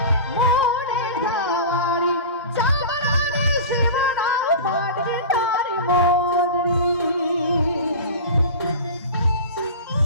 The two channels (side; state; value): both; inverted; correlation -0.31